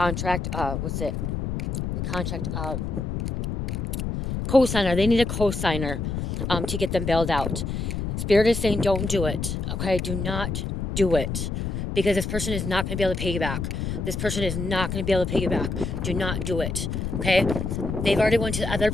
What's it? The contract. Co-signer. They need a co-signer to get them bailed out. Spirit is saying don't do it. Okay, do not do it, because this person is not going to be able to pay you back. This person is not going to be able to pay you back. Do not do it. Okay, they've already went to other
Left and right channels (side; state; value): left; noise; rumble, 3 dB below the sound